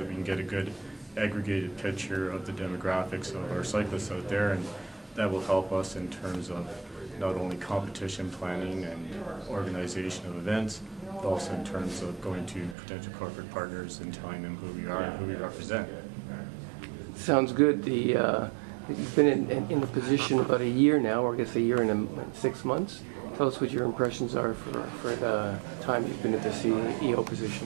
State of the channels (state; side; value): drops out; left; at 12.8 s